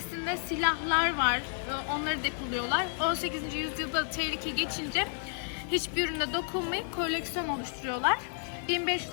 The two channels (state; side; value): silent; right; 57 dB below the other